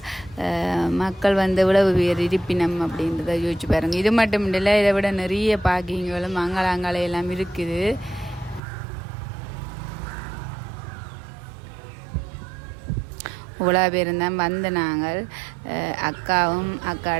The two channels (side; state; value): left; drops out; at 8.6 s